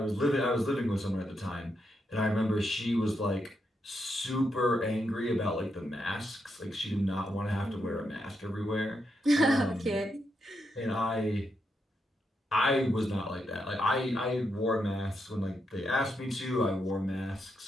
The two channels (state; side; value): normal; both; correlation 0.82